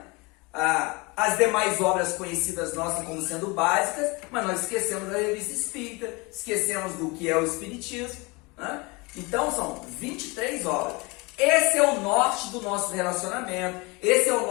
As demais obras conhecidas nossas como sendo básicas, mas nós esquecemos da Revista Espírita, esquecemos do que é o Espiritismo, né? Então são 23 obras. Esse é o norte do nosso relacionamento, esse é o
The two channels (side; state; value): right; quieter; 26.4 dB